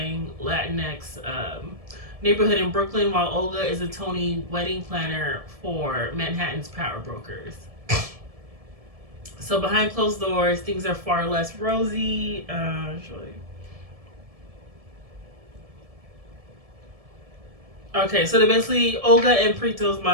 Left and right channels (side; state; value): left; late; 1.7 ms